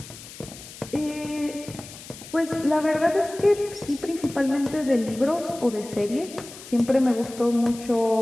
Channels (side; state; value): left; noise; hiss, 16 dB below the sound